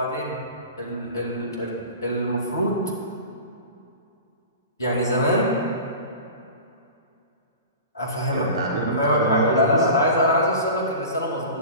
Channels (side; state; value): both; inverted; correlation -0.35